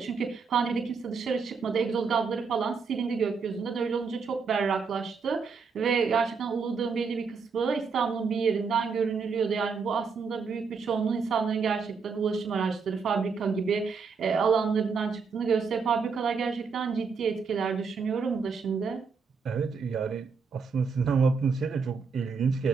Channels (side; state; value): left; quieter; 5.3 dB